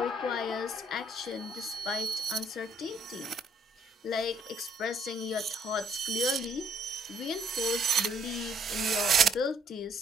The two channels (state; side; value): normal; both; correlation 0.66